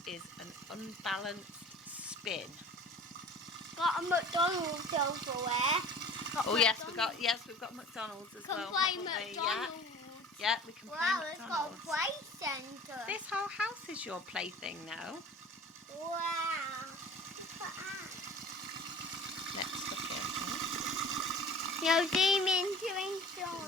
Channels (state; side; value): normal; both; correlation 0.42